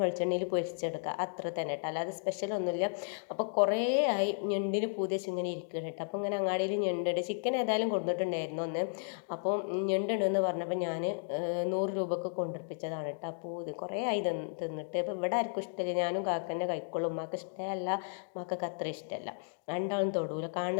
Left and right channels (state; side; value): silent; right; digital silence